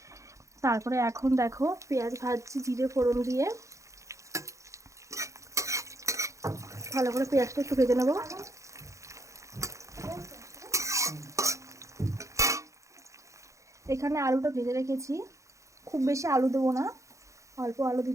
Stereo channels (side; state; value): left; late; 0.15 ms